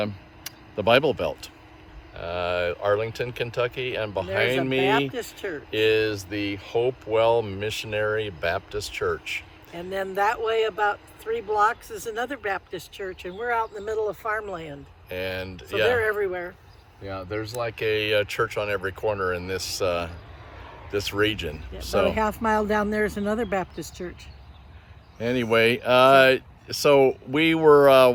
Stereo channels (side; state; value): both; identical; correlation 1.00